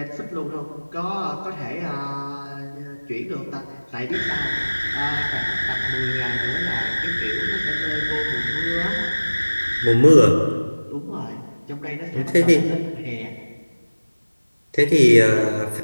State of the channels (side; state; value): both; inverted; correlation -1.00